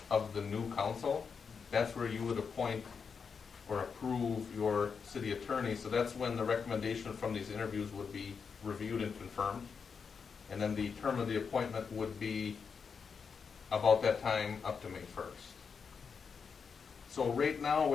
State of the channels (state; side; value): quieter; right; 5.9 dB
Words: of the new council. That's where you would appoint or approve your city attorney. So that's when the recommendation from these interviews would be reviewed and confirmed. And then the term of the appointment would be about that time up to May 1st. So right now